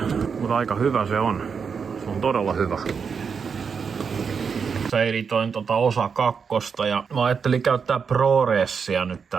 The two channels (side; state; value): left; quieter; 6.1 dB